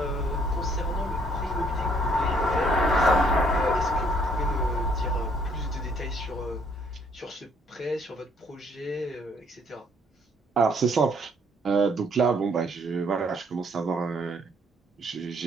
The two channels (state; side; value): normal; both; correlation 0.65